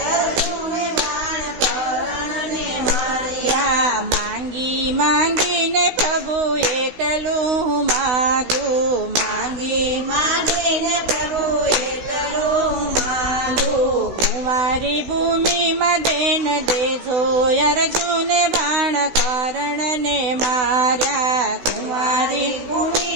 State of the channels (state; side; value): late; left; 16 ms